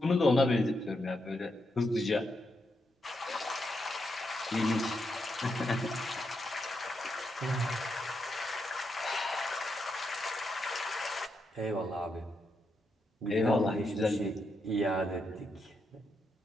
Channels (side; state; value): both; normal; correlation 0.82